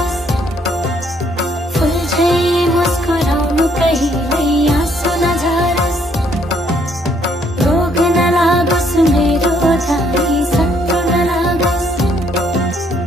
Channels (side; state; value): both; normal; correlation 0.68